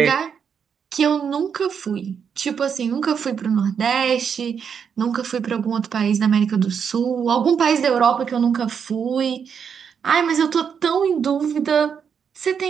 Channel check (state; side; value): quieter; left; 7.1 dB